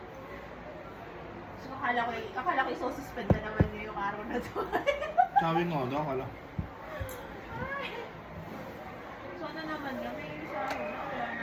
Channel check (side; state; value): both; identical; correlation 1.00